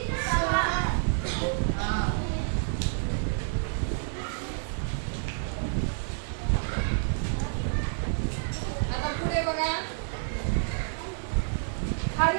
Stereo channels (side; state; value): left; silent; digital silence